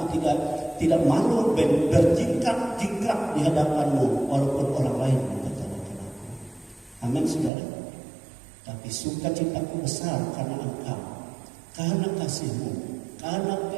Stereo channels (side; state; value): left; drops out; at 7.5 s